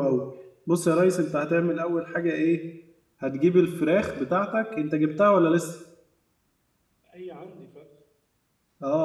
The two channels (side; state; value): both; identical; correlation 1.00